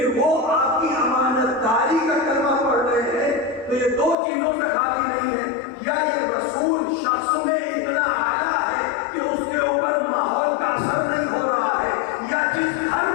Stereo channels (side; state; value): right; drops out; at 4.2 s